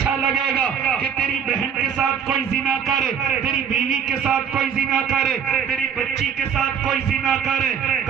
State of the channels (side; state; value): left; quieter; 7.7 dB